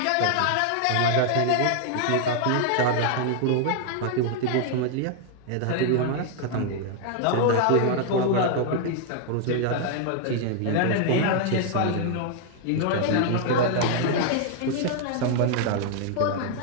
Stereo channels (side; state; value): both; different; correlation 0.00